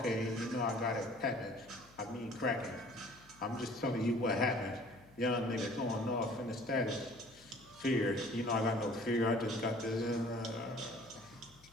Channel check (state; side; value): noise; left; hum, 26 dB below the sound